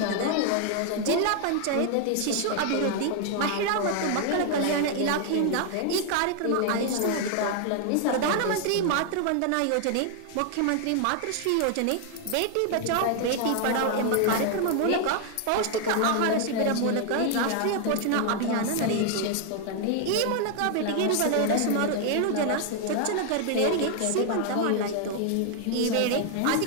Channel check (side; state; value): both; different; correlation 0.00